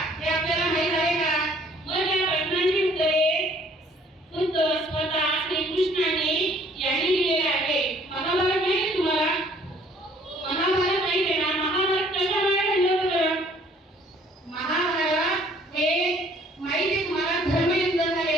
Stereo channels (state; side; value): normal; both; correlation 0.59